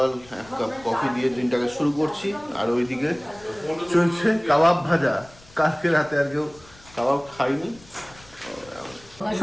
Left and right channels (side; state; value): left; noise; rumble, 24 dB below the sound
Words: এক কাপ কফি দিয়ে দিনটাকে শুরু করছি। আর ওইদিকে চলছে কাবাব ভাজা। কালকে রাতে আর কেউ কাবাব খাইনি।